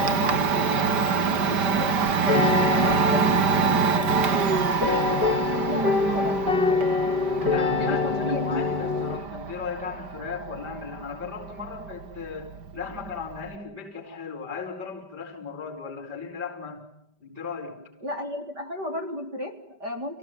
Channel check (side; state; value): left; late; 5.1 ms